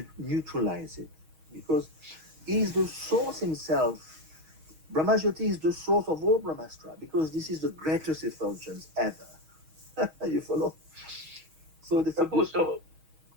neutralize it, because he is the source himself. Brahmajyoti is the source of all Brahmastra, because this is the greatest effulgence ever. You follow? So this is Prabhu, so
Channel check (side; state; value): left; late; 6.3 ms